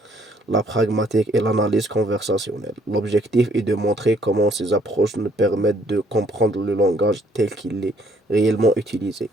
la pragmatique et l'analyse conversationnelle. L'objectif est de montrer comment ces approches nous permettent de comprendre le langage tel qu'il est réellement utilisé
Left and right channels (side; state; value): both; normal; correlation 0.64